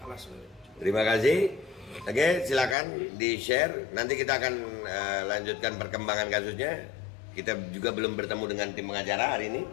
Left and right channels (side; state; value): right; drops out; at 2.8 s